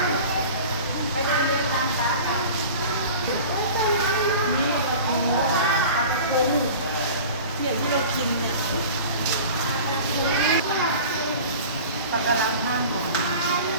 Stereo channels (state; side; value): inverted; both; correlation -0.39